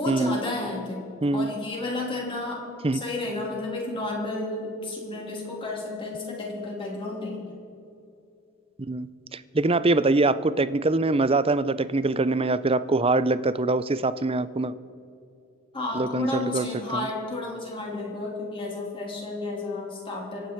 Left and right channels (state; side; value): normal; both; correlation 0.44